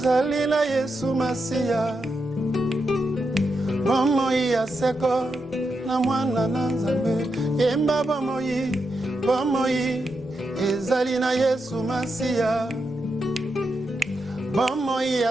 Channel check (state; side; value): normal; both; correlation 0.85